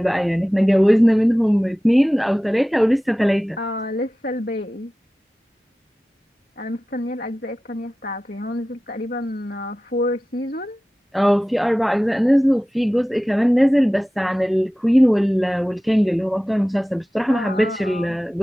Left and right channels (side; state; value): both; normal; correlation 0.96